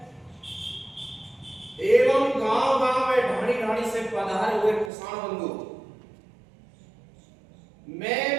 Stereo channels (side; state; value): left; drops out; at 4.9 s